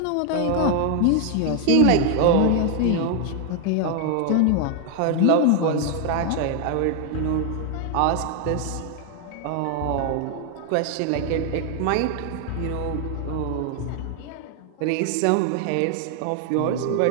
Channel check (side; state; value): both; different; correlation 0.00